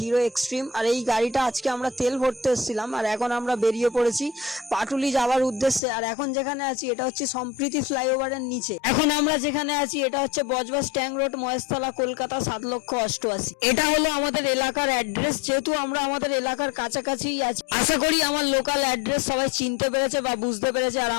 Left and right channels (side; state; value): right; drops out; at 5.8 s